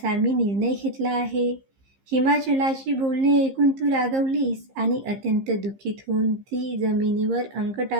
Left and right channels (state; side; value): late; left; 15 ms